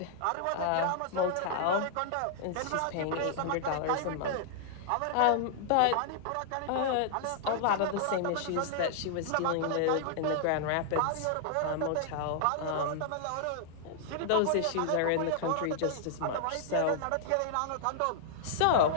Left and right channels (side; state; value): both; different; correlation -0.01